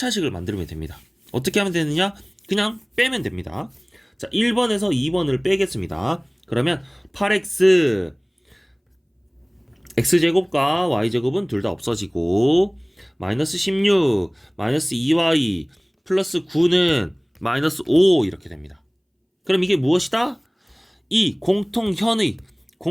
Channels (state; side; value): identical; both; correlation 1.00